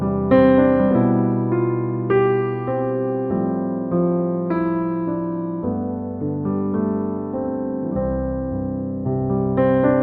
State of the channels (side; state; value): both; identical; correlation 1.00